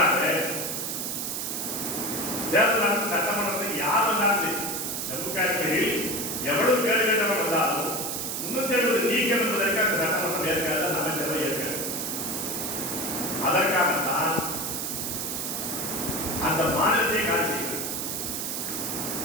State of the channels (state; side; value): noise; right; hiss, 3 dB below the sound